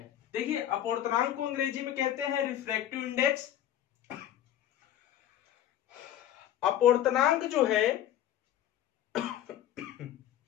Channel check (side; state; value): right; quieter; 11.5 dB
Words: देखिए, अपवर्तनांक को अंग्रेजी में कहते हैं रिफ्रैक्टिव इंडेक्स। अपवर्तनांक जो है